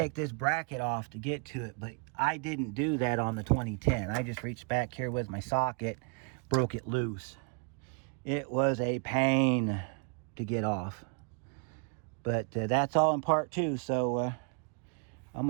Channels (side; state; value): left; quieter; 38.3 dB